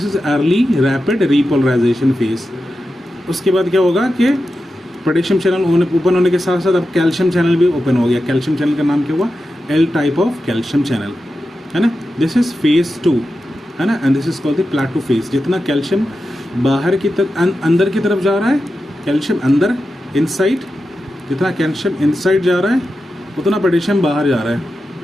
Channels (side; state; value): both; normal; correlation 0.91